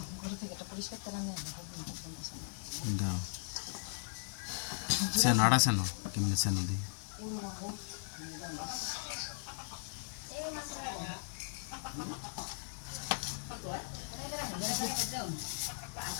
দাও সে নাড়া সেন কেমনি সেন দিই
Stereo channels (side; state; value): right; silent; 52 dB below the other